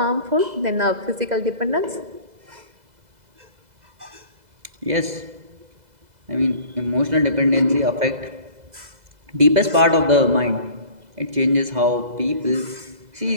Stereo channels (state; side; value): late; left; 2.0 ms